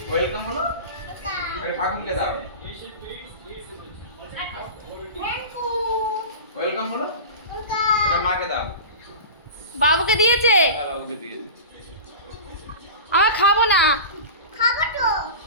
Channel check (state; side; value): inverted; both; correlation -0.31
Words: ওয়েলকাম বলো এটা ঠাকুরকে দাও ওয়েলকাম বলো এটা মাকে দাও বাবুকে দিয়েছে বাবুকে দিয়েছে আমার খাবো না